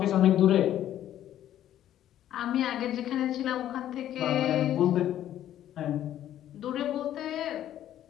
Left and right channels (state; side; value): quieter; right; 11.7 dB